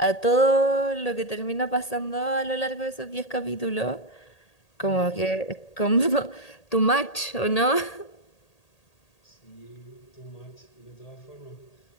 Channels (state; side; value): late; right; 1.8 ms